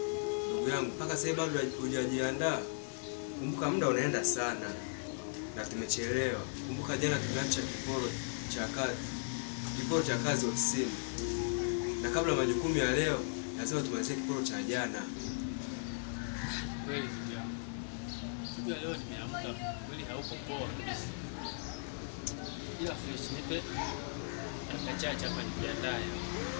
Ndugu yangu, mpaka sasa bado hujajiandaa. Kumbuka muda unaenda sana. Na tumechelewa. Kumbuka jana tumeacha kiporo cha kazi ofisini. Na kabla majukumu ya leo, lazima tumalizie kiporo cha jana. Kweli ndio. Siku ya leo nimeamka kweli hauko poa kabisa. Ila fresh nipe akachacha hapa nijiandae.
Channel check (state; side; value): silent; right; digital silence